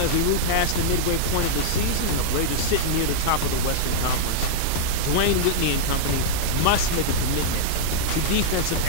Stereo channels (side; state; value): both; different; correlation -0.02